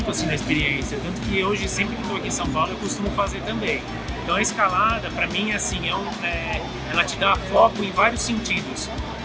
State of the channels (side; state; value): both; identical; correlation 1.00